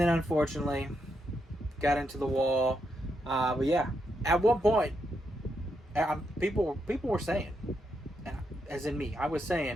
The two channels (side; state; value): both; normal; correlation 0.81